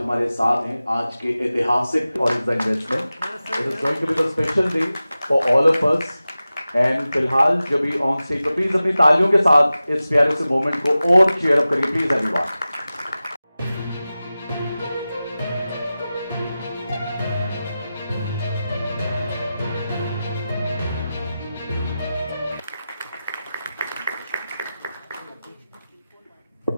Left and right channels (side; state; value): both; inverted; correlation -0.95